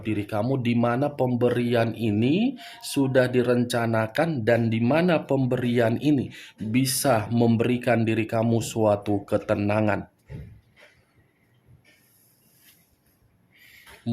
diri kamu, di mana pemberian ini sudah direncanakan dan di mana pemberian ini bisa memberikan diri kamu suatu ketenangan.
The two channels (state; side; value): identical; both; correlation 1.00